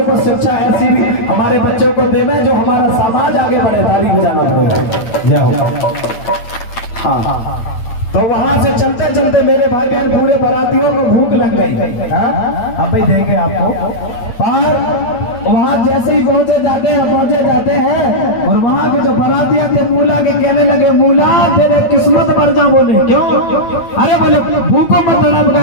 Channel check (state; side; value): late; right; 8.9 ms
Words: शिक्षा ऐसी भी हमारे बच्चों को देवे जो हमारा समाज आगे बढ़े। ताली बजाना पड़ेगा। जय हो। हाँ, तो वहां से चलते चलते मेरे भाई बहन पूरे बारातियों को भूख लग गई। अब भाई देंगे आपको, पर वहां जैसे ही पहुंचे जाते हैं और वहां के जो बारातिया थे मूला के कहने लगे, मूला तेरे किस्मत पर जा। बोले क्यों? अरे बोले भूखों मत तड़प